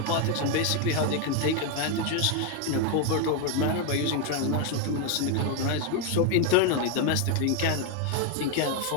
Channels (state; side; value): different; both; correlation 0.01